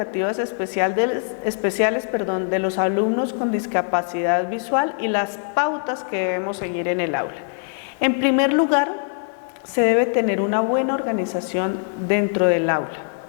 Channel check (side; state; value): right; silent; 56 dB below the other